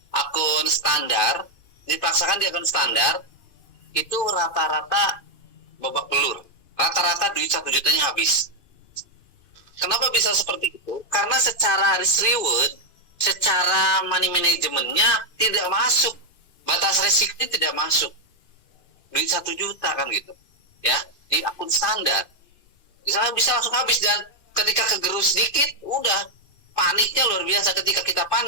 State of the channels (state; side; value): late; right; 2.5 ms